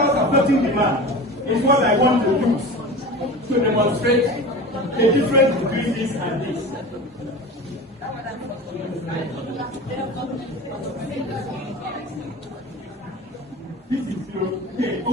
affecting demand is what I want to use to demonstrate the difference between this and this. This is zero.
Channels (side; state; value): both; normal; correlation 0.33